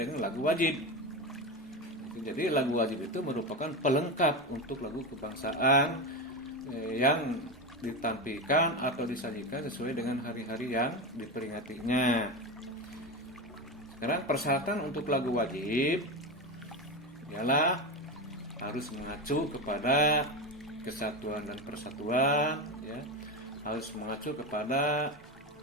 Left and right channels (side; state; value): both; normal; correlation 0.18